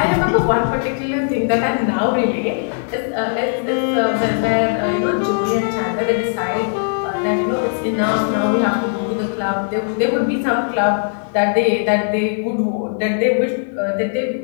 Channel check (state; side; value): silent; right; 62 dB below the other